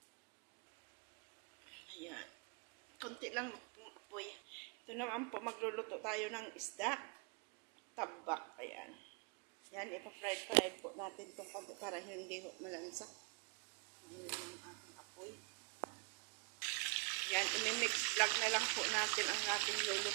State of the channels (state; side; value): quieter; left; 29.1 dB